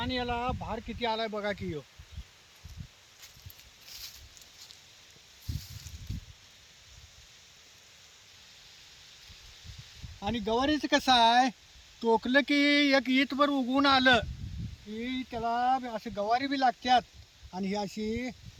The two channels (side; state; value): both; identical; correlation 1.00